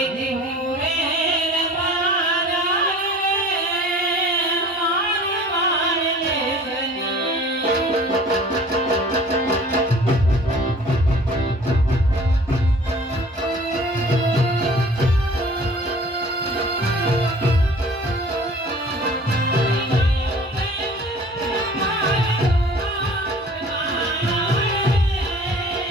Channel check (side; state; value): both; normal; correlation 0.47